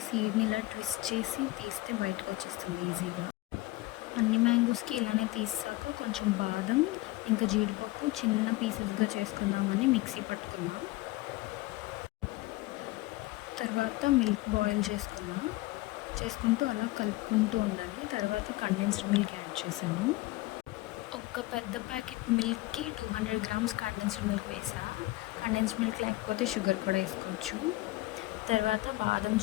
సీడ్ని ఇలా ట్విస్ట్ చేసి తీస్తే బయటకు వచ్చేస్తుంది ఈజీగా. అన్ని మ్యాంగోస్కి ఇలానే తీసాక కొంచెం బాదం ఇంకా జీడిపప్పు చిన్న పీసెస్గా చేసుకుందామని మిక్సీ పట్టుకున్నాం. తర్వాత మిల్క్ బాయిల్ చేసుకుంటూ అలా కలుపుకుంటూ ఉండాలి. తర్వాత కండెన్స్డ్ మిల్క్ యాడ్ చేశాను. ఒక పెద్ద ప్యాకెట్ మిల్క్కి 200 గ్రామ్స్ కండెన్స్డ్ మిల్క్ వేసా. కండెన్స్డ్ మిల్క్ లేకపోతే షుగర్ కూడా వేసుకోవచ్చు. తర్వాత బాదం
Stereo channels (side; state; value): right; quieter; 19.5 dB